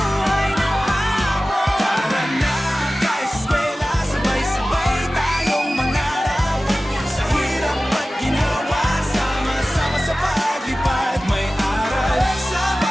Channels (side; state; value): both; normal; correlation 0.96